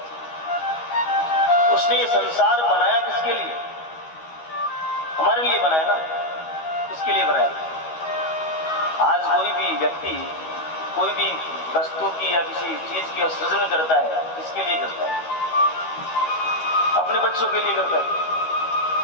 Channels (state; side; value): late; right; 13 ms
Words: उसने ये संसार बनाया किसके लिए? हमारे लिए बनाया ना। किसके लिए बनाया? आज कोई भी व्यक्ति कोई भी वस्तु की या किसी चीज की सृजन करता है, किसके लिए करता है? अपने बच्चों के लिए करता है।